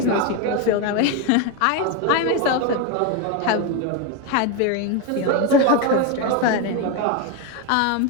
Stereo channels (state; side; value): different; both; correlation 0.03